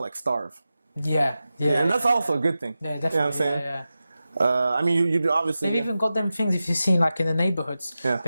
like starve. Yeah. And that's also a good thing. Yeah, definitely. You know what I'm saying? Yeah. I mean, you obviously. They've even got them things, if you've seen, like in the neighborhoods. Yeah.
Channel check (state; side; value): inverted; both; correlation -0.93